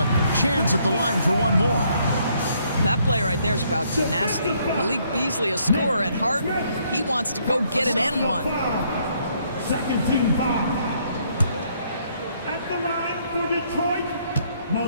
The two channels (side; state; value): both; inverted; correlation -0.69